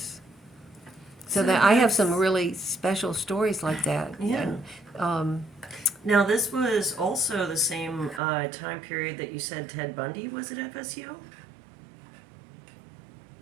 So that I have some really special stories like that. Yeah. And, now, this was also the same time period that you said Ted Bundy was at FSU?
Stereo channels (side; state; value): left; drops out; at 8.2 s